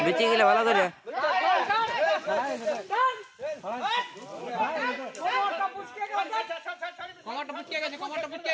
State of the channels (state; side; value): identical; both; correlation 1.00